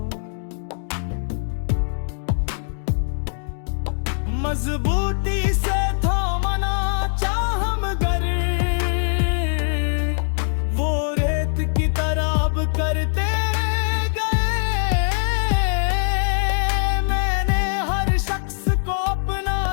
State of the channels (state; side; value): silent; right; digital silence